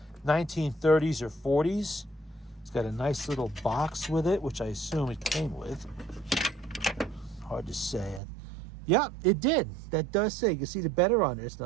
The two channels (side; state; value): left; drops out; at 8.2 s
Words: 1930s or 40s. It's got a nice little box with it, which I assume it came with. Hard to say. Yeah, it did. That does say. You can see the better on there. It's